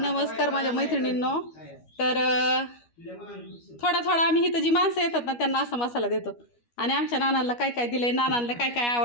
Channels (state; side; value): late; right; 12 ms